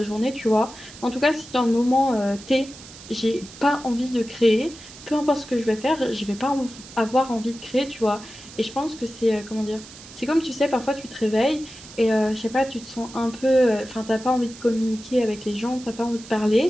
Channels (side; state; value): right; noise; hiss, 17 dB below the sound